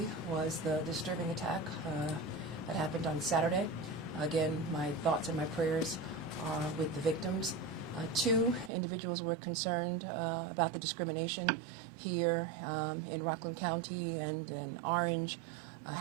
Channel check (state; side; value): drops out; left; at 8.7 s